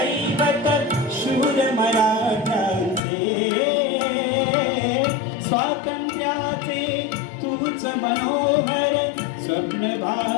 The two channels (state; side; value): drops out; right; at 3.0 s